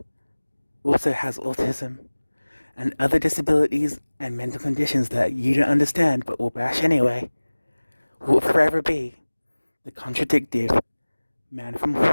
also has autism and other disabilities and mental conditions that you don't understand but will bash anyway, will forever be the contradictive man from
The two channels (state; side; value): inverted; both; correlation -1.00